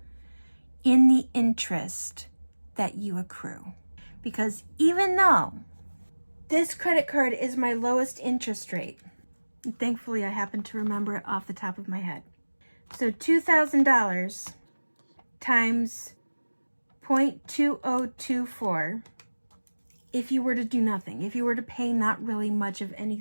in the interest that you accrue. Because even though this credit card is my lowest interest rate, and thankfully I happen to remember it off the top of my head. So $2,000 times 0.2024, if you were to do nothing, if you were to pay not really much of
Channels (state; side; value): inverted; both; correlation -1.00